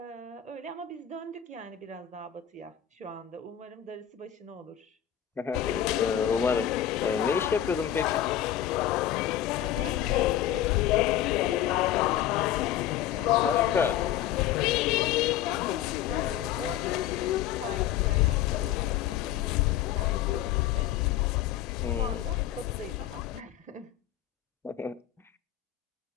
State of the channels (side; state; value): right; quieter; 11.3 dB